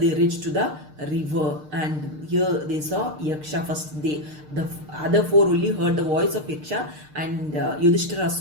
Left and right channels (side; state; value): left; late; 6.6 ms